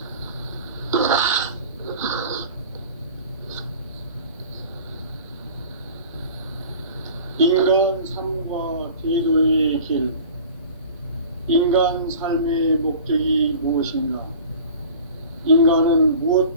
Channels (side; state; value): both; inverted; correlation -0.41